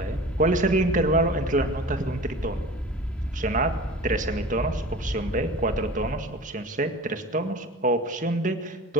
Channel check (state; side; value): normal; both; correlation 0.38